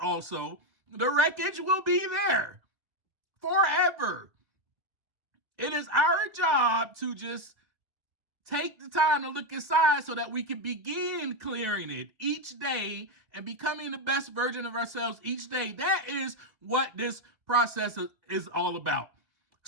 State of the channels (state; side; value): late; left; 2.0 ms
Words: The wreckage will be there forever. It is our job to just take the time to look inside so that we can begin clearing it each day and becoming the best version of ourselves each day. That is what this process is all about.